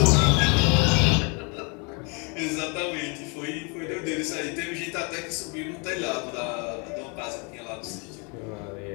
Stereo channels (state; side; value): quieter; right; 33.0 dB